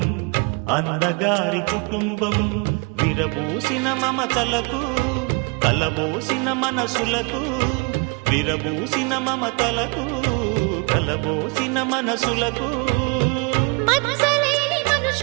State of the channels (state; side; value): quieter; left; 32.1 dB